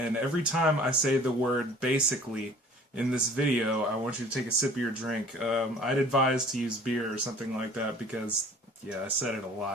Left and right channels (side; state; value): both; normal; correlation 0.49